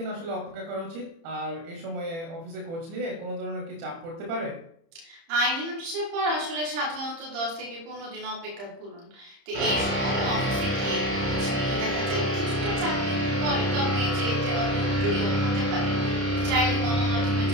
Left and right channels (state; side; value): late; left; 30 ms